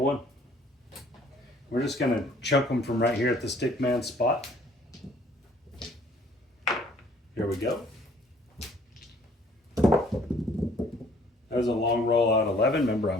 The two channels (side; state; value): both; normal; correlation 0.58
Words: We're just going to chunk them from right here at the stick man spot. Here we go. That was a long roll out 11. Remember,